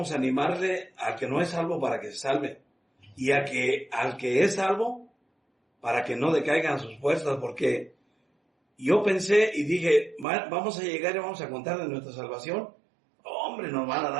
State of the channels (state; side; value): drops out; left; at 10.2 s